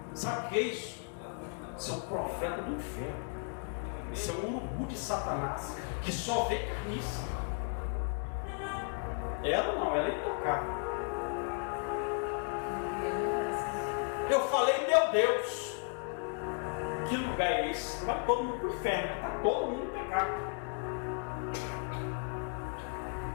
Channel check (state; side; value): quieter; right; 38.9 dB